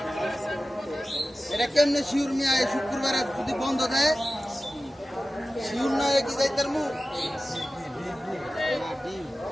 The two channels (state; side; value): normal; both; correlation 0.95